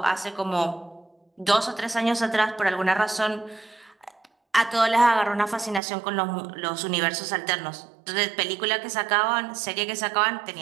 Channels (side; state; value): left; drops out; at 5.8 s